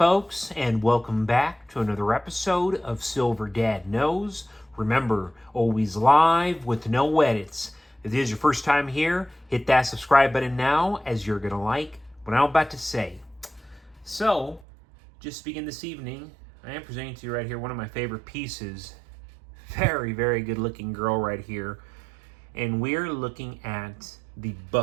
and welcome back to another episode of Silver Dad Knows. Remember, always live with no edits. If this is your first time here, hit that subscribe button now, as you're going to like what I'm about to say. So, just to begin this evening, I am presenting to you right here one of my favorite pieces. Very, very good looking girl right here. And we're looking at the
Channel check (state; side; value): drops out; left; at 14.7 s